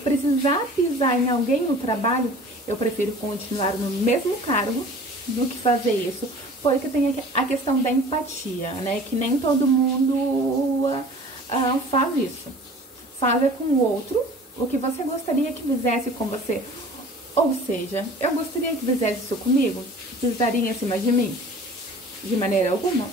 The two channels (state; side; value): normal; both; correlation 0.45